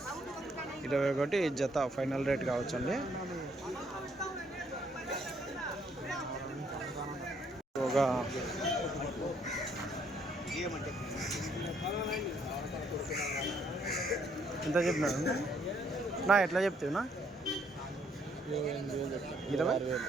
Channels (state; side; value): normal; both; correlation 0.68